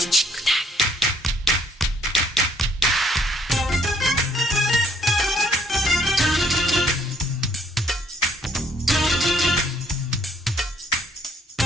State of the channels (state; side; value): normal; both; correlation 0.65